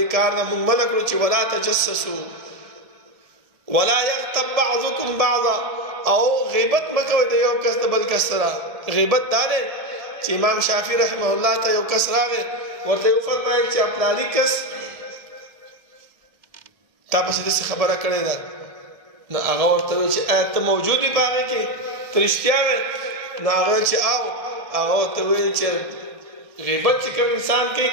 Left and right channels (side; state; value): left; late; 1.7 ms